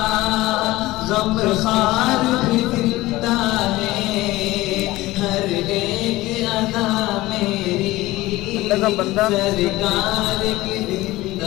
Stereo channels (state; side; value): quieter; right; 18.2 dB